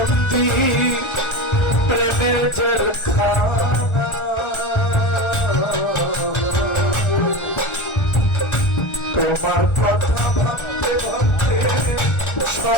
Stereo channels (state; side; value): late; right; 1.4 ms